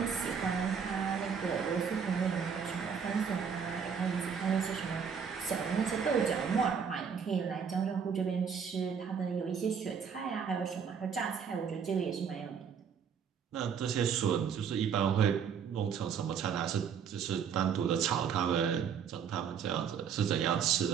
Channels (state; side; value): quieter; left; 7.0 dB